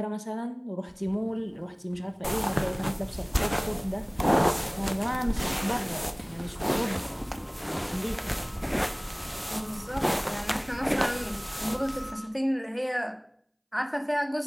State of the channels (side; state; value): both; identical; correlation 1.00